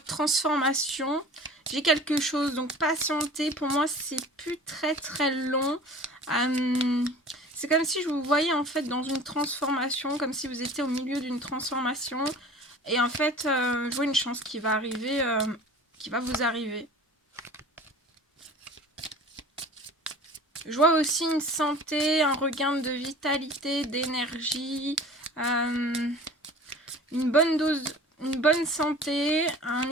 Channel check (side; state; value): both; normal; correlation 0.42